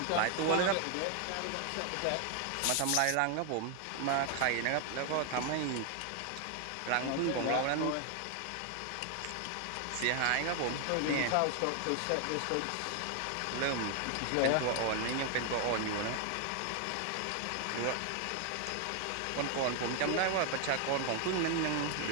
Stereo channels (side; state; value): both; different; correlation 0.00